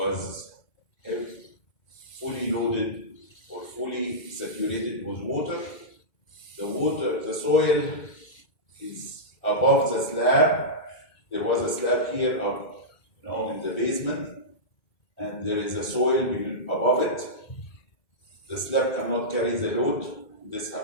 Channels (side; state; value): right; late; 1.7 ms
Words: fully loaded or fully saturated with water. The soil is above the slab. There was a slab here up, in the basement, and there is a soil above it. The slab cannot carry the load. This